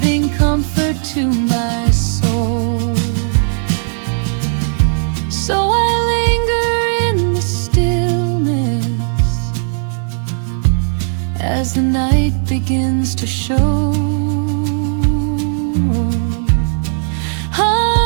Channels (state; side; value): silent; left; digital silence